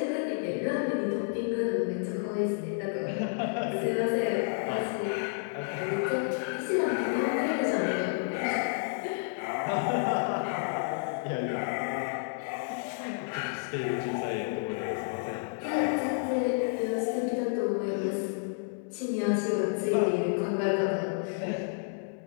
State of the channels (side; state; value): right; silent; 57 dB below the other